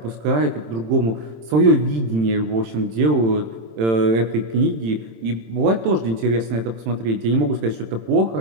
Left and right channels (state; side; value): late; left; 27 ms